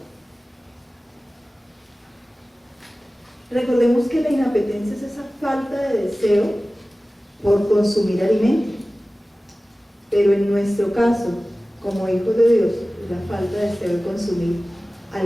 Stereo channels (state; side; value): normal; both; correlation 0.97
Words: Recordemos que la inapetencia es esa falta de deseo por consumir alimento, pero en nuestro caso, como hijos de Dios, es la falta de deseo de consumir